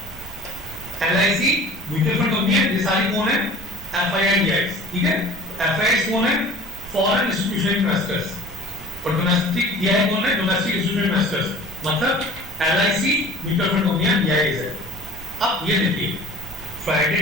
LIC mutual fund company है, ये सारी कौन है? एफआईआई डीआई, ठीक है। एफआईआई कौन है? फॉरेन इंस्टीट्यूशनल इन्वेस्टर्स, और डोमेस्टिक डीआई कौन है? डोमेस्टिक इंस्टीट्यूशनल इन्वेस्टर्स, मतलब एलआईसी म्यूचुअल फंड कंपनियां डीआई है। अब ये देखिए फ्राइडे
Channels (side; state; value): both; normal; correlation 0.45